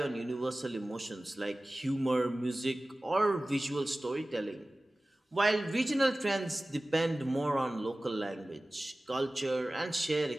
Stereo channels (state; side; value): normal; both; correlation 0.97